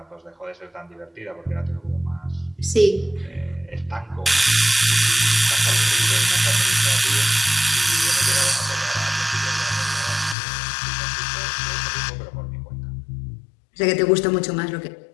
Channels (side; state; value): right; drops out; at 10.4 s